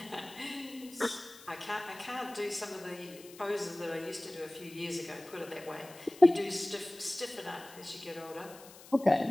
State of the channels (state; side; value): noise; left; hiss, 19 dB below the sound